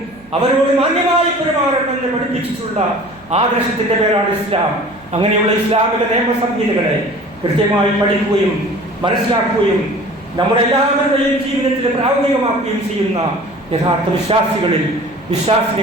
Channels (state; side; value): noise; right; hum, 26 dB below the sound